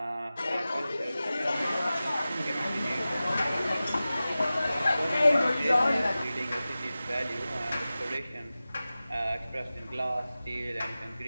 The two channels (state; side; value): inverted; both; correlation -0.96